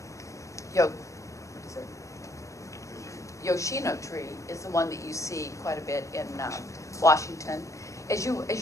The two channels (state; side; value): late; right; 0.15 ms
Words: Yoshino tree is the one that you see quite a bit in Washington. As you